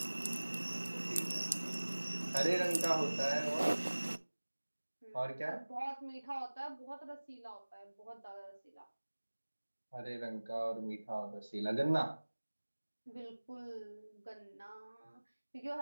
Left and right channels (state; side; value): inverted; both; correlation -1.00